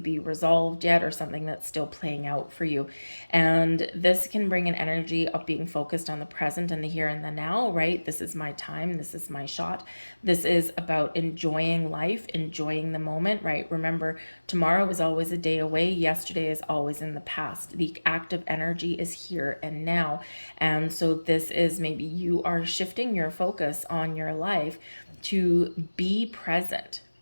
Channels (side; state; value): both; inverted; correlation -1.00